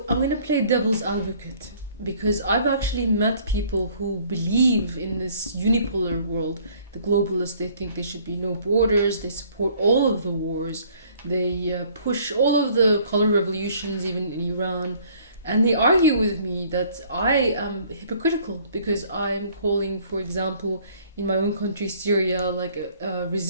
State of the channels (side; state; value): both; inverted; correlation -0.58